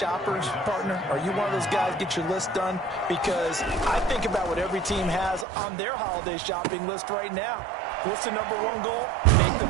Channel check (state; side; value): drops out; left; at 5.5 s